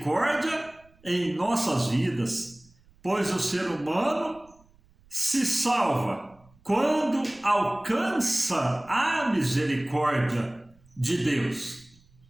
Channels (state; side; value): noise; right; rumble, 30 dB below the sound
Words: em nossas vidas, pois o ser humano se salva quando alcança a misericórdia de Deus.